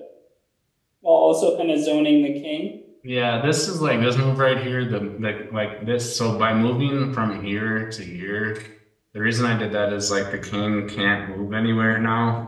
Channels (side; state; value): both; identical; correlation 1.00